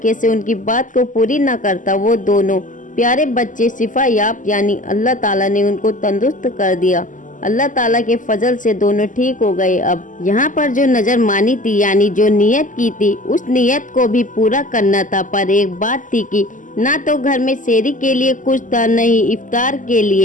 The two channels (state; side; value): late; right; 0.38 ms